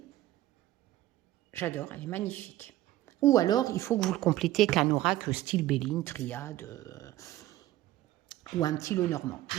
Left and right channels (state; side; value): quieter; left; 14.9 dB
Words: j'adore, elle est magnifique. Ou alors, il faut que vous le complétez avec un oracle style Béline, Triade, ou un petit Lenormand.